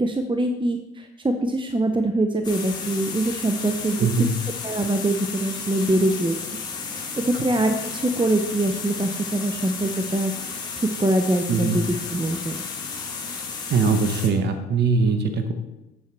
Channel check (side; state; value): both; normal; correlation 0.65